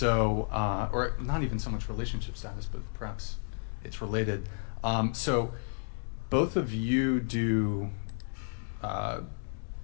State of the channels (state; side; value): silent; right; digital silence